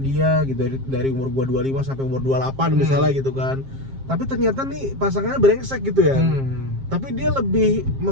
gitu, dari umur gue 25 sampai umur 28 misalnya gitu kan. Tapi ternyata nih pasangannya brengsek gitu ya. Tapi dia lebih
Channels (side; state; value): left; late; 7.5 ms